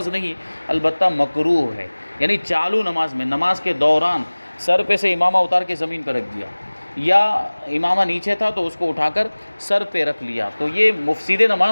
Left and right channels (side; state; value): both; inverted; correlation -1.00